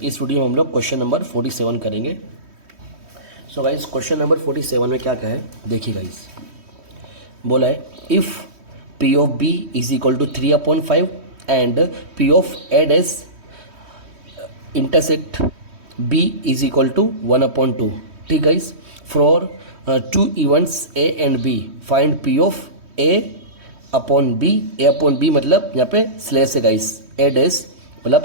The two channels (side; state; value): left; late; 3.1 ms